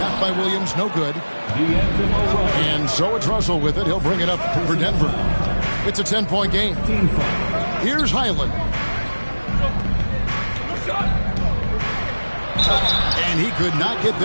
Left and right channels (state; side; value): inverted; both; correlation -1.00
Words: by Williams, no good. And so it's Russell with it. He'll bring it up for Denver. It's a 10-point game. Here's Highland. And he could not get